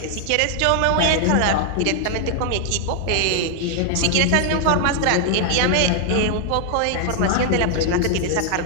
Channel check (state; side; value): different; both; correlation 0.00